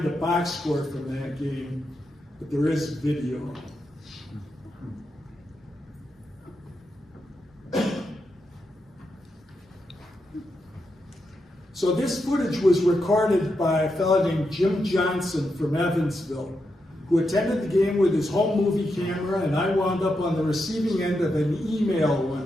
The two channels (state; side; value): normal; both; correlation 0.85